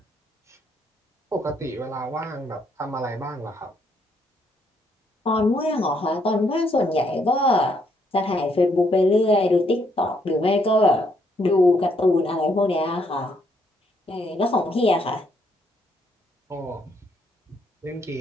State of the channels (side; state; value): both; normal; correlation 0.72